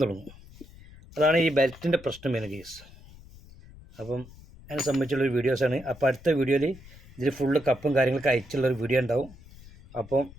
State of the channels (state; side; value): noise; left; rumble, 21 dB below the sound